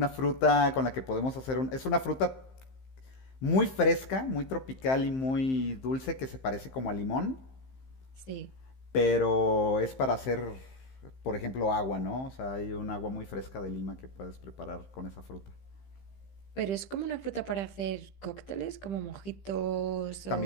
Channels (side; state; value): right; late; 15 ms